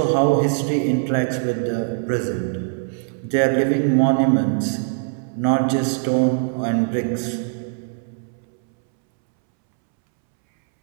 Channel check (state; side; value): silent; left; 65 dB below the other